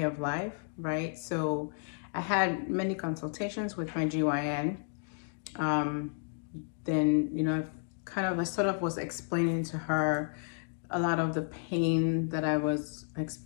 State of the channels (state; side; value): silent; right; 56 dB below the other